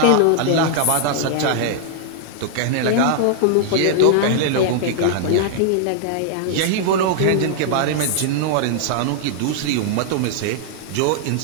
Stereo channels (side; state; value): both; different; correlation -0.01